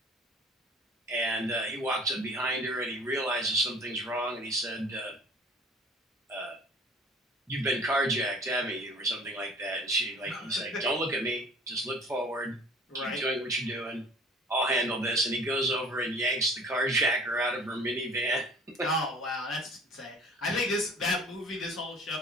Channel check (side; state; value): both; normal; correlation 0.49